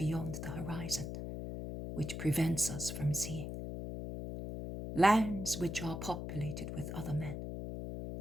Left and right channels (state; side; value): noise; left; hum, 6 dB below the sound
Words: the horizon, which prevents us from seeing. Lands which are populated with other men,